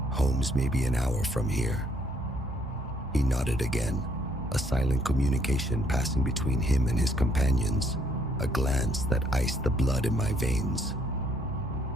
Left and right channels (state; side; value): normal; both; correlation 0.67